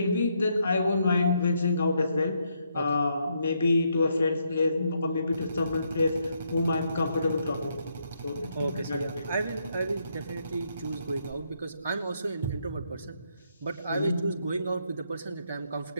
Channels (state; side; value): inverted; both; correlation -0.76